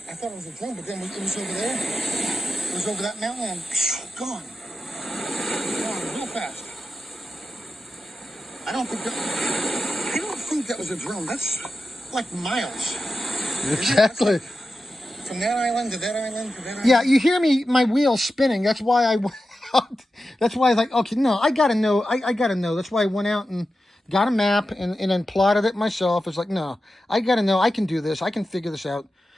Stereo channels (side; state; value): both; normal; correlation 0.92